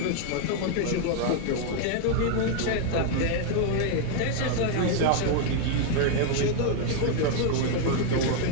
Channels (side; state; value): both; different; correlation 0.00